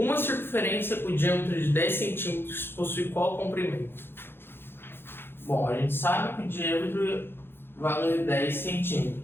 circunferência com diâmetro de 10 centímetros possui qual comprimento? Bom, a gente sabe que o diâmetro vale 10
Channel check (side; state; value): right; late; 0.10 ms